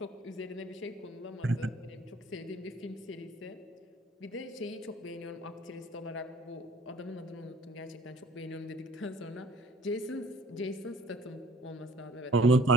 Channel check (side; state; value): both; normal; correlation 0.56